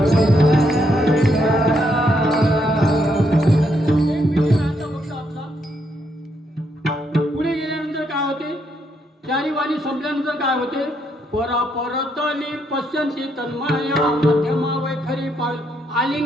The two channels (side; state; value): both; normal; correlation 0.76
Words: पुढे गेल्यानंतर काय होते, चारी वाणी संपल्यानंतर काय होते, परा परतली पश्यंती तन्मया मध्यमा वैखरी पाळ